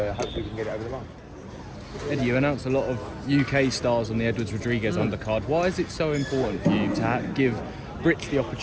hopefully we can get it over the line. Eddie, you announced a lot of UK stars on the Edwards Rodriguez undercard. Why is it so important for you to give Brits the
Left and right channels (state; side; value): identical; both; correlation 1.00